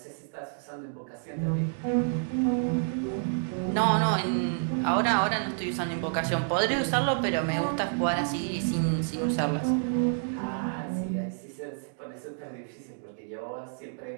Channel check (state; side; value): silent; left; digital silence